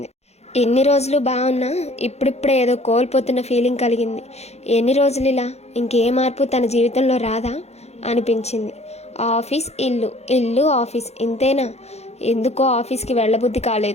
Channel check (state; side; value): late; right; 0.31 ms